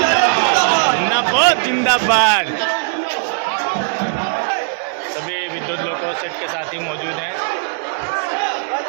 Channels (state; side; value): silent; left; 62 dB below the other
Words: जिंदाबाद जिंदाबाद। सभी विद्युत लोको सेट के साथी मौजूद हैं।